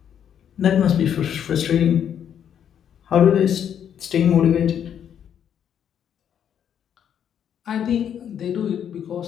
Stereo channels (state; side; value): quieter; right; 9.0 dB